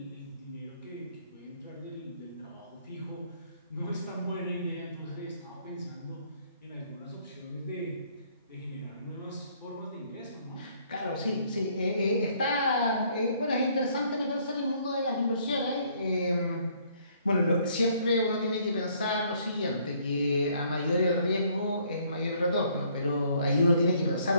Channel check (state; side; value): inverted; both; correlation -0.64